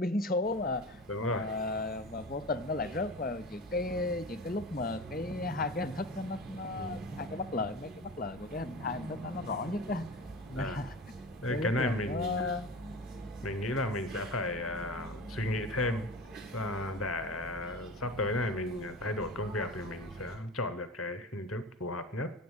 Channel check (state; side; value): normal; both; correlation 0.31